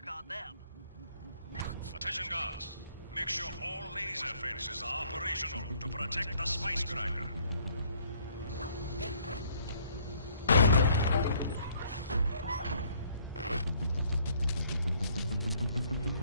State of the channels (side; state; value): both; inverted; correlation -0.62